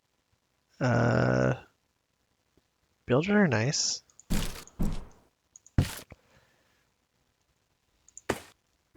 Builders are nice.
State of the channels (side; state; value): both; identical; correlation 1.00